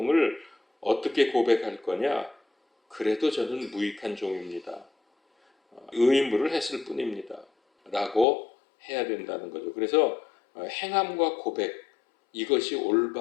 어떻게 고백할 거냐? 그래도 저는 무익한 종입니다. 의무를 했을 뿐입니다. 라고 해야 된다는 거죠. 그래서 행함과 고백, 이것이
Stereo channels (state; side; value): drops out; right; at 8.2 s